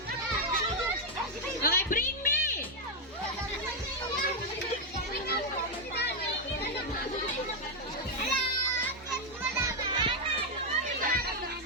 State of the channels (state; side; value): normal; both; correlation 0.01